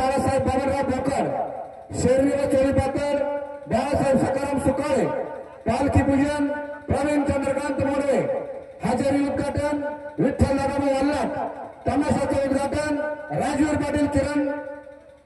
बाबरराव भोकर, शेरवी व चोळीपातर बाळासाहेब सकाराम सुकाळे, पालखी पूजन प्रवीण चंद्रकांत मोडवे, हजेरी उद्घाटन विठ्ठल नागाभाऊ वल्लाट, तमाशाचे उद्घाटन राजवीर पाटील किरण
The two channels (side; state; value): both; identical; correlation 1.00